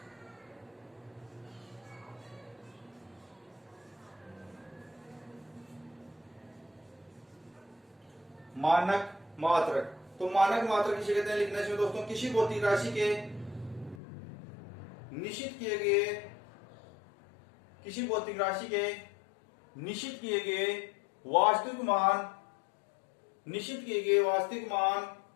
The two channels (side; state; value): right; drops out; at 14.0 s